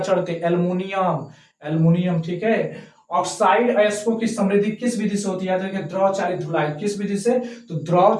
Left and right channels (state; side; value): identical; both; correlation 1.00